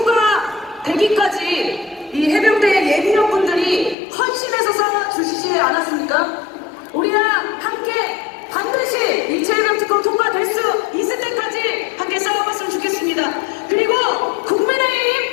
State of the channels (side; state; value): right; drops out; at 4.0 s